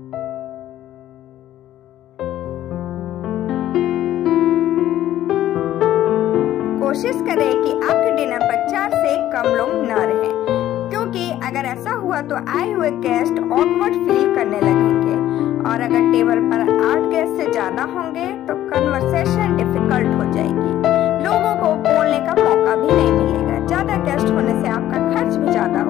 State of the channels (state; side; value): quieter; right; 12.9 dB